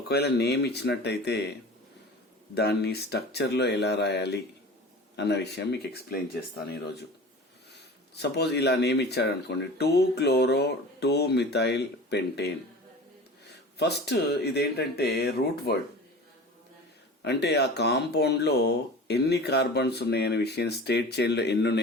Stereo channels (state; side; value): normal; both; correlation 0.37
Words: ఒకవేళ name ఇచ్చినట్టయితే దాన్ని స్ట్రక్చర్లో ఎలా రాయాలి అన్న విషయం మీకు ఎక్స్ప్లెయిన్ చేస్తాను ఈరోజు. సపోజ్ ఇలా నేమ్ ఇచ్చాడనుకోండి, 2-chloro-2-methyl pentane. ఫస్ట్ ఇదేంటంటే రూట్ వర్డ్, అంటే ఆ కాంపౌండ్లో ఎన్ని కార్బన్స్ ఉన్నాయనే విషయం, స్టేట్ చైన్లో ఎన్ని